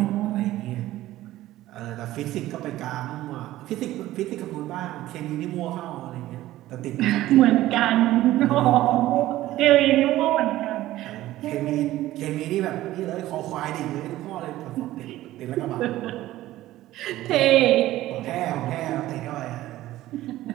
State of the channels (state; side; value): quieter; left; 15.4 dB